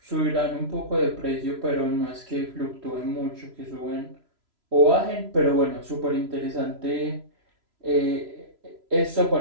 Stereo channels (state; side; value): late; left; 3.0 ms